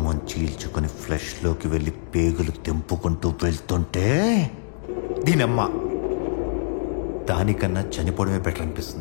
చీల్చుకొని ఫ్లెష్లోకి వెళ్ళి పేగులు తెంపుకుంటూ వెళ్తుంటే దీనమ్మ దానికన్నా చనిపోవడమే బెటర్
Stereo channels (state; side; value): silent; right; digital silence